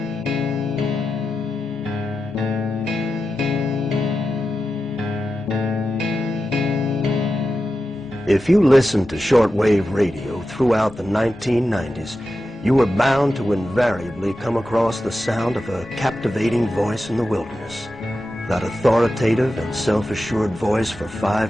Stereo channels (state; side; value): normal; both; correlation 0.91